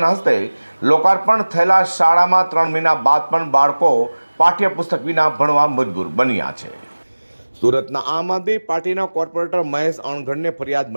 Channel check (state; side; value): inverted; both; correlation -1.00